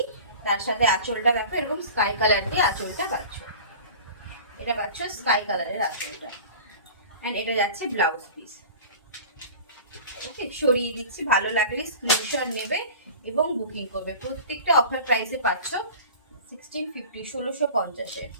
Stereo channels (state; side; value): inverted; both; correlation -0.38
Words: তার সাথে আঁচলটা দেখো এরকম স্কাই কালার দিয়ে আঁচলটা পাচ্ছ। এটা পাচ্ছ স্কাই কালারের আঁচলটা, এন্ড এটা যাচ্ছে ব্লাউজ পিস। ওকে, সরিয়ে দিচ্ছি, ভালো লাগলে স্ক্রিনশট নেবে এবং বুকিং করবে। প্রত্যেকটা অফার প্রাইসে পাচ্ছ 1650, 1650-এ।